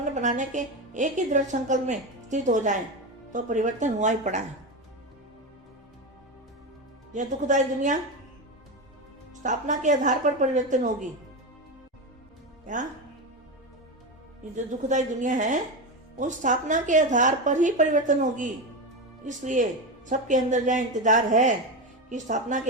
बनाने के एक ही दृढ़ संकल्प में स्थित हो जाएं तो परिवर्तन हुआ ही पड़ा है। यह दुखदायी दुनिया स्थापना के आधार पर परिवर्तन होगी। क्या ये जो दुखदायी दुनिया है वो स्थापना के आधार पर ही परिवर्तन होगी। इसलिए सबके अंदर यह इंतजार है कि स्थापना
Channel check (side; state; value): both; normal; correlation 0.17